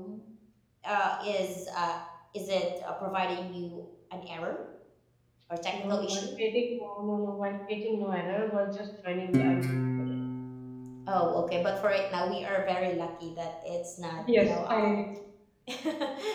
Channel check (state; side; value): identical; both; correlation 1.00